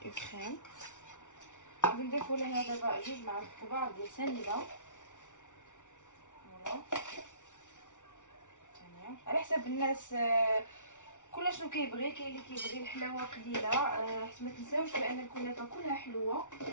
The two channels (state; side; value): late; right; 0.86 ms